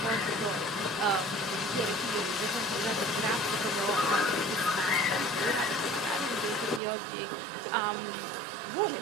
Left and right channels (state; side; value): drops out; left; at 6.8 s